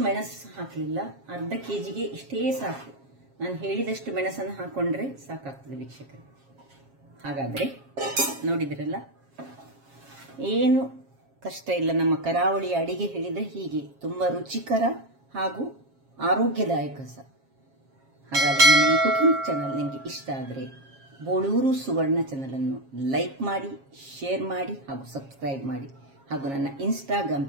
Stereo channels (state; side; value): late; left; 7.4 ms